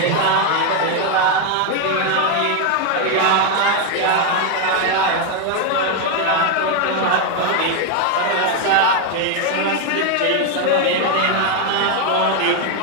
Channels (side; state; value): both; different; correlation 0.01